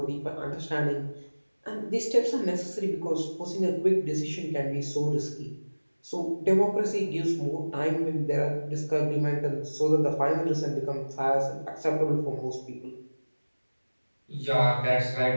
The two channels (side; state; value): both; inverted; correlation -1.00